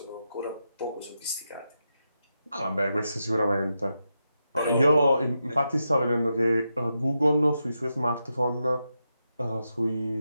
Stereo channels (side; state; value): both; inverted; correlation -0.87